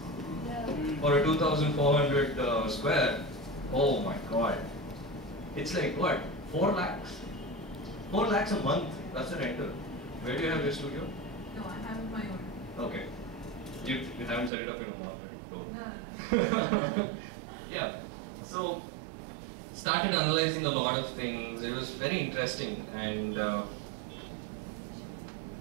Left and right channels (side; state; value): left; drops out; at 14.5 s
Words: For a 2,400 square, oh my god. It's like what, 4 lakhs? 4 lakhs a month, that's the rental. Where do you have your studio? No, I have my own. Okay. You haven't set it up in a mall, right? No. Yeah. So, started analyzing a lot of things. It was very interesting and